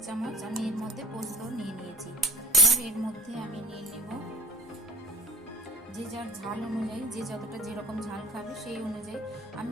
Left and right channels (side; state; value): both; normal; correlation 0.42